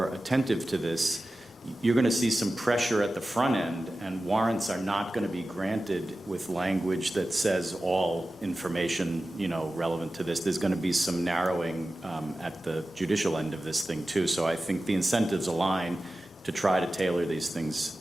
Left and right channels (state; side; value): normal; both; correlation 0.95